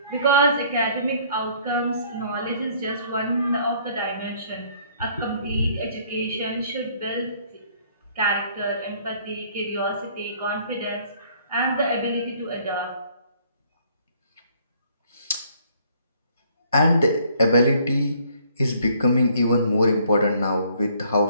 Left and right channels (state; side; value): inverted; both; correlation -0.61